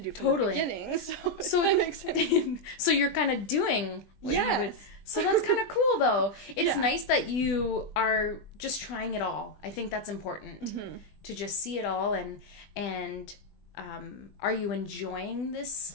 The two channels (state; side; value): late; right; 20 ms